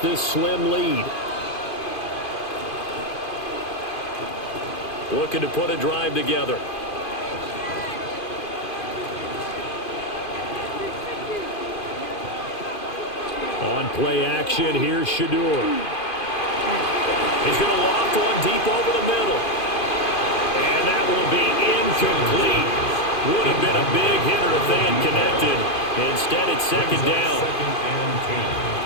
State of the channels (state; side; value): late; right; 2.5 ms